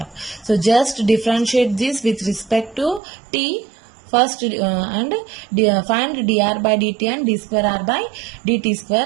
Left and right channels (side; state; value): left; drops out; at 3.0 s